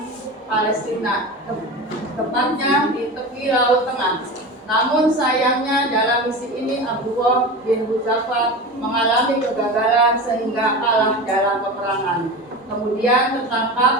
Palestina, tepatnya di tepi Laut Tengah. Namun sayangnya dalam misi ini Abdullah bin Hudzafah mengalami kegagalan sehingga kalah dalam peperangan. Kemudian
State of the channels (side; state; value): both; normal; correlation 0.28